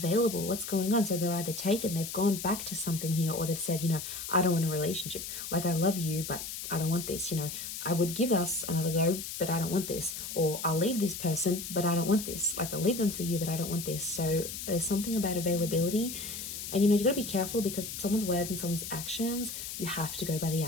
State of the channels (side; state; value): left; noise; hiss, 7 dB below the sound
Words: What's going on? So they're either taken, they've gone back to something here, or they've said, you know, I don't want a relationship. Like, I love you, but I don't want this. You know, I would give us another go, but I don't want this. Or I'll leave this person, but I don't want this. Like, I'll leave them for you, but I don't want this. So there's something about availability. And, you know, you got to be careful because someone's word and someone's actions, you have to go by the